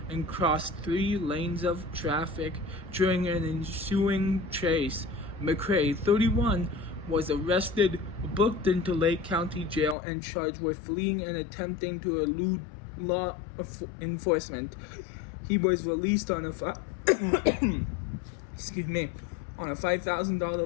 and crossed 3 lanes of traffic during an ensuing chase. McCray, 31, was arrested, booked into Lake County Jail, and charged with fleeing and attempting to elude law enforcement. He was released on a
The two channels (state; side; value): drops out; right; at 10.0 s